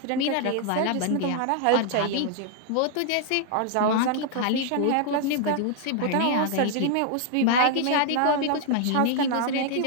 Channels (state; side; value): different; both; correlation 0.00